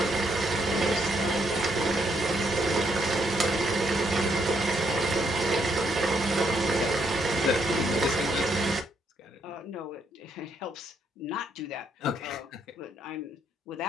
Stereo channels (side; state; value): both; normal; correlation 0.74